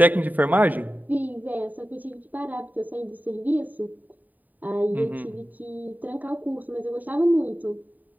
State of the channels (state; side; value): late; left; 0.084 ms